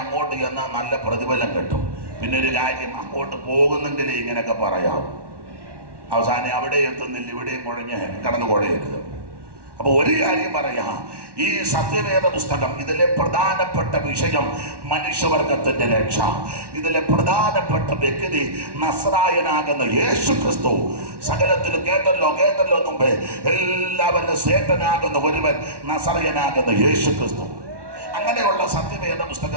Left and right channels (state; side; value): late; left; 1.1 ms